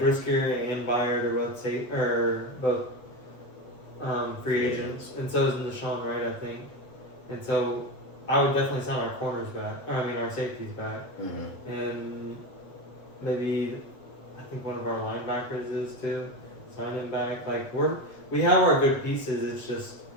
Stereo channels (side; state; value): right; late; 8.0 ms